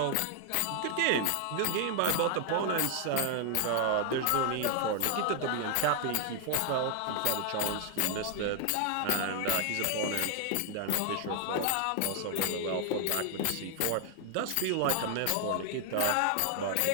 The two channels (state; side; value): different; both; correlation 0.00